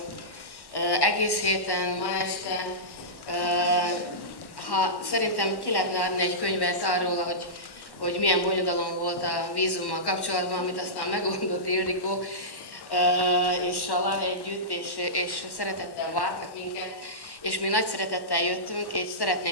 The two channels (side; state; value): right; late; 1.1 ms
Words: egész héten, ma este. Szerintem ki lehetne adni egy könyvet arról, hogy milyen bonyodalom volt a vízummal kapcsolatban, amit aztán megoldott Ildikó és Sala együtt, és szeretettel vártak minket. És mi nagy szeretettel jöttünk, és